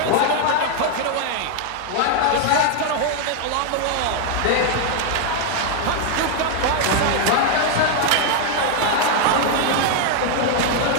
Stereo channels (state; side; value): different; both; correlation 0.00